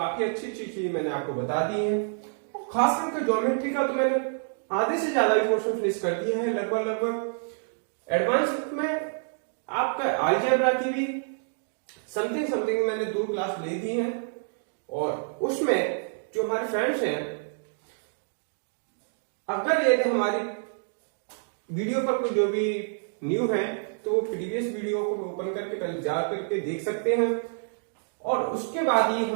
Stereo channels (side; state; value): left; silent; digital silence